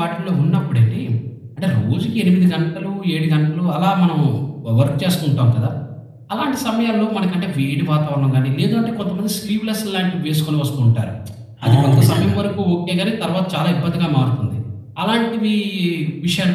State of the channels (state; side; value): identical; both; correlation 1.00